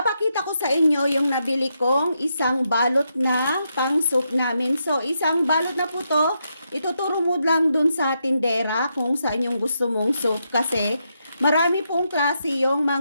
ko sa inyo yung nabili kong isang balot na pang soup namin. So, isang balot na po to. Ituturo mo lang dun sa tindera kung saan yung gusto mong soup. Kasi marami pong klase yung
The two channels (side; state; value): both; inverted; correlation -0.82